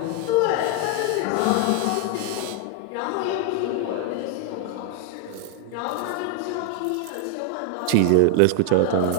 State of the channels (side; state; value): both; different; correlation 0.01